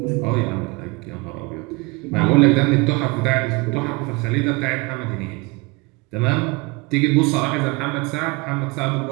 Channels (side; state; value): left; quieter; 26.3 dB